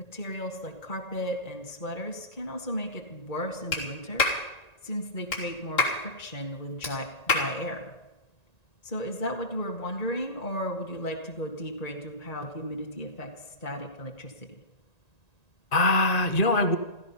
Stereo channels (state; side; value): late; right; 1.9 ms